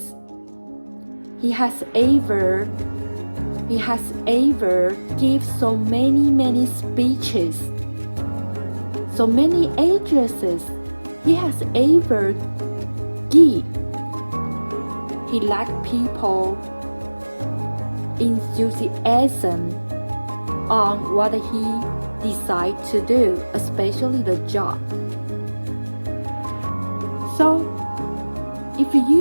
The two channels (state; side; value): inverted; both; correlation -1.00